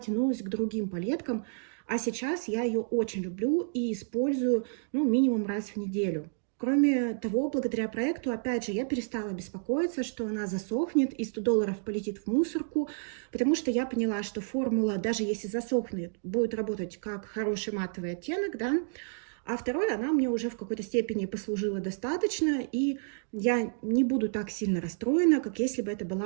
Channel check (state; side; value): silent; left; digital silence